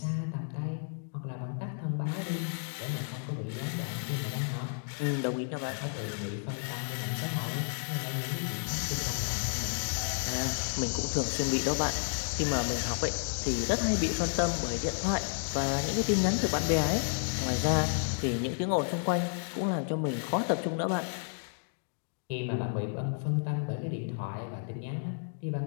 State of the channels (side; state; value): right; silent; digital silence